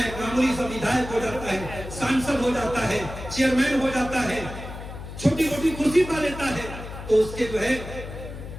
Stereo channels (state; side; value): noise; left; hum, 11 dB below the sound